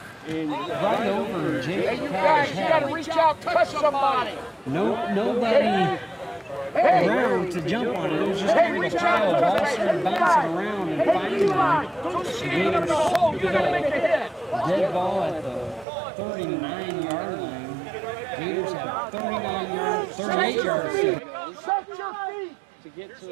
Right over Jake. You gotta reach out, touch somebody. Nobody around to jump on it. It was just kind of a trial. Ball started bouncing around and finally the Gators scooped up. Dead ball at the 39-yard line. Gators have 38 yards to get to the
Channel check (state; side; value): drops out; left; at 15.9 s